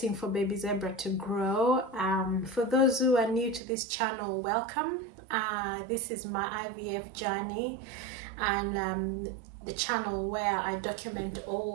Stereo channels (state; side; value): drops out; left; at 3.6 s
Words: for baby zebra to grow. For those who are new to this channel, welcome. This is my IVF journey, and the channel where I document